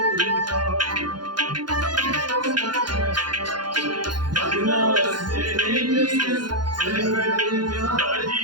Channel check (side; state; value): left; late; 0.71 ms